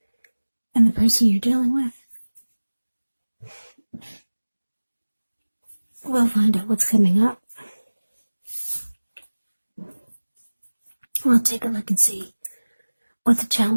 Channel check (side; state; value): both; inverted; correlation -1.00